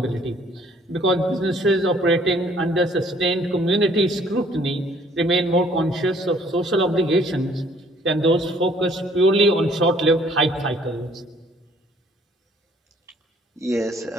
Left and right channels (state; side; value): normal; both; correlation 0.59